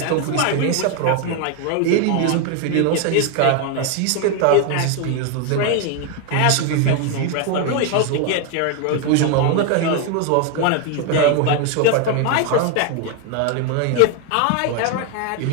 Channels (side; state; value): both; different; correlation 0.01